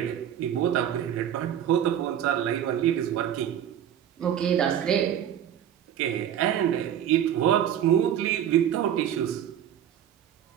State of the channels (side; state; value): left; quieter; 10.2 dB